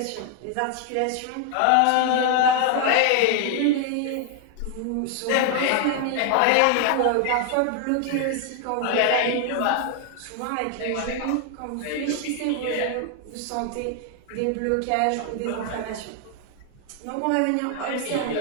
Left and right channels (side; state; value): both; different; correlation 0.00